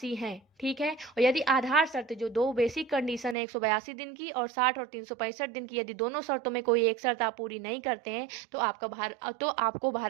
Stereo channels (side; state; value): left; drops out; at 3.4 s